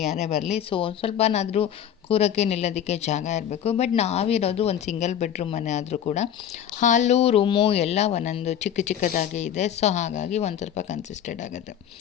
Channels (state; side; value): quieter; right; 9.7 dB